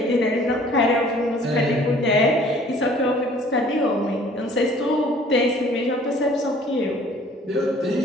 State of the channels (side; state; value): both; normal; correlation 0.54